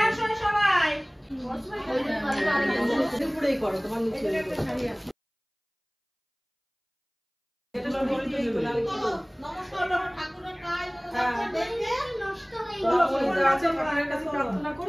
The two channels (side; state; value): both; identical; correlation 1.00